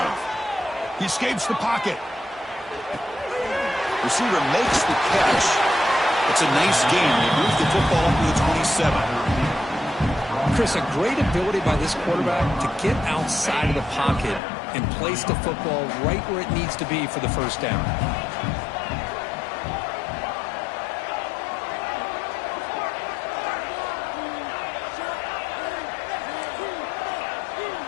He escapes the pocket. Receiver makes the catch. It's a nice game. He moves the football up to the 27. Chris, a great ability by this quarterback to get outside of the pocket and place the football right where it needs to be for the first down.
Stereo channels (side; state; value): right; drops out; at 14.4 s